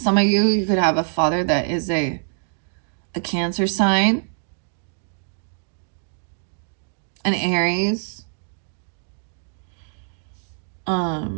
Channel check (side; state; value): left; silent; digital silence